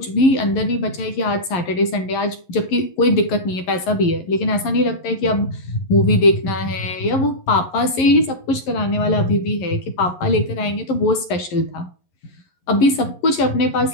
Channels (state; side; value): late; right; 11 ms